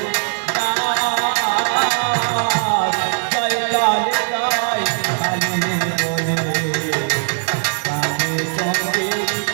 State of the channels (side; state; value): left; silent; digital silence